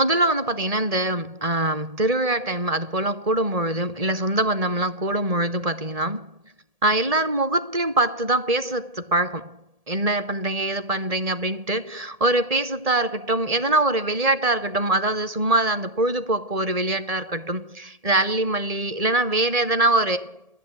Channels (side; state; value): left; late; 1.7 ms